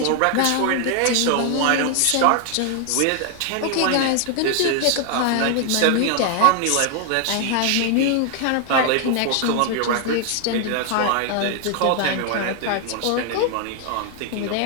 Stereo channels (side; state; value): both; different; correlation 0.00